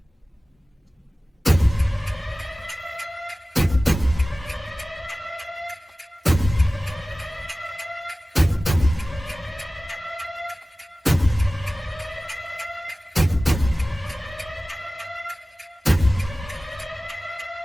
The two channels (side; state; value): both; normal; correlation 0.97